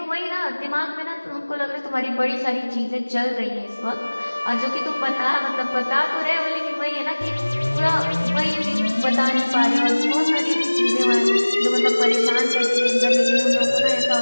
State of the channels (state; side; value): inverted; both; correlation -1.00